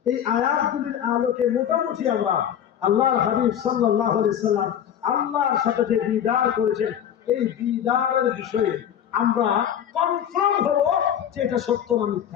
এই আয়াতগুলির আলোকে মোটামুটি আমরা আল্লাহর হাবিব সাল্লাল্লাহু আলাইহি সাল্লাম আল্লাহর সাথে যে দিদার করেছেন, এই দিদারের বিষয়ে আমরা কনফার্ম হব যে এটা সত্য না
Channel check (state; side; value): quieter; right; 9.6 dB